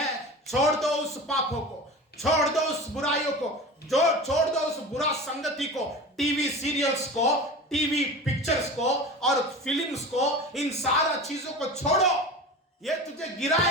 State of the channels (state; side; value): normal; both; correlation 0.33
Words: छोड़ दो उस पापों को, छोड़ दो उस बुराइयों को, छोड़ दो उस बुरा संगति को, टीवी सीरियल्स को, टीवी पिक्चर्स को और फिल्म्स को, इन सारा चीजों को छोड़ो। ये तुझे